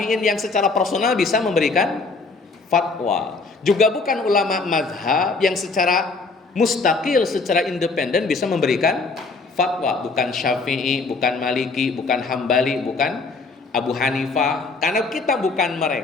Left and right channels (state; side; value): quieter; right; 4.0 dB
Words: yang secara personal bisa memberikan fatwa. Juga bukan ulama mazhab yang secara mustaqil, secara independen bisa memberikan fatwa. Bukan Syafi'i, bukan Maliki, bukan Hambali, bukan Abu Hanifah. Karena kita bukan